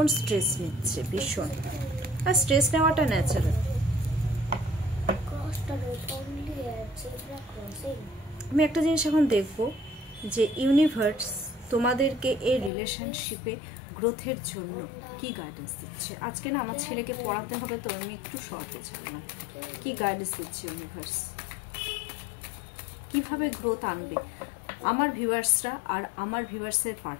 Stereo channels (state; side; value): drops out; right; at 12.7 s